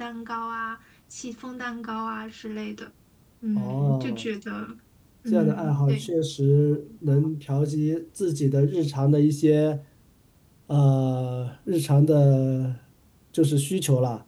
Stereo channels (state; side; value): identical; both; correlation 1.00